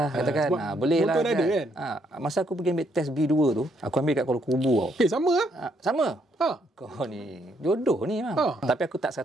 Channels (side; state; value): both; normal; correlation 0.73